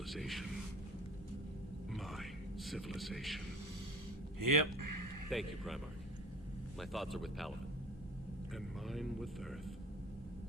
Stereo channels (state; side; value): normal; both; correlation 0.39